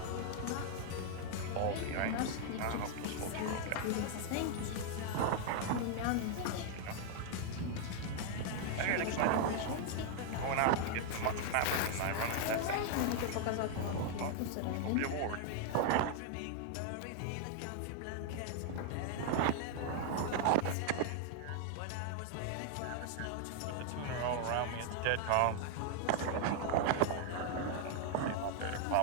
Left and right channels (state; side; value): different; both; correlation 0.00